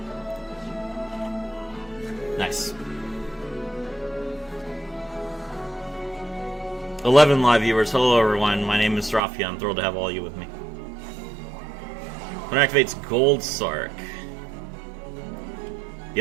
Nice. 11 live viewers. Hello everyone, my name is Rafia. I'm thrilled to have all you with me. When it activates Gold Sark. The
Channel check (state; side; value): drops out; left; at 9.2 s